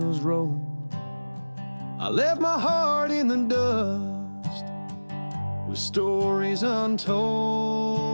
roll. I left my heart in the dust with stories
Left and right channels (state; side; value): inverted; both; correlation -1.00